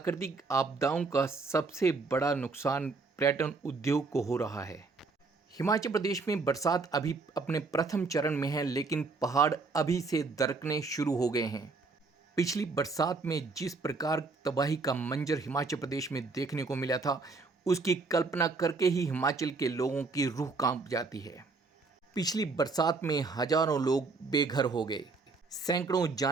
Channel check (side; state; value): left; quieter; 4.0 dB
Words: आपदाओं का सबसे बड़ा नुकसान पर्यटन उद्योग को हो रहा है। हिमाचल प्रदेश में बरसात अभी अपने प्रथम चरण में है, लेकिन पहाड़ अभी से दरकने शुरू हो गए हैं। पिछली बरसात में जिस प्रकार तबाही का मंजर हिमाचल प्रदेश में देखने को मिला था, उसकी कल्पना करके ही हिमाचल के लोगों की रूह कांप जाती है। पिछली बरसात में हजारों लोग बेघर हो गए, सैकड़ों